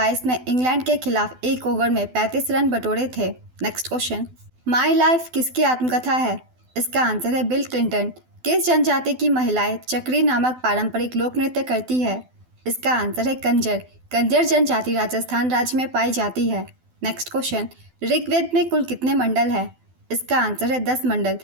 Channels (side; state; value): left; late; 12 ms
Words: में इंग्लैंड के खिलाफ एक ओवर में 35 रन बटोरे थे। नेक्स्ट क्वेश्चन, माई लाइफ किसकी आत्मकथा है? इसका आंसर है बिल क्लिंटन। किस जनजाति की महिलाएं चक्री नामक पारंपरिक लोक नृत्य करती है? इसका आंसर है कंजर। कंजर जनजाति राजस्थान राज्य में पाई जाती है। नेक्स्ट क्वेश्चन, ऋग्वेद में कुल कितने मंडल है? इसका आंसर है 10 मंडल।